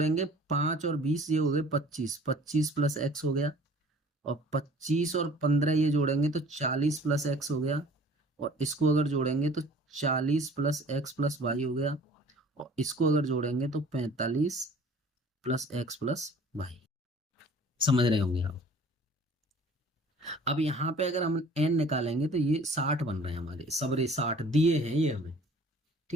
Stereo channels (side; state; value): both; normal; correlation 0.49